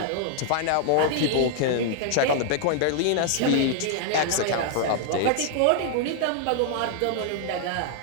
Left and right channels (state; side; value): different; both; correlation 0.00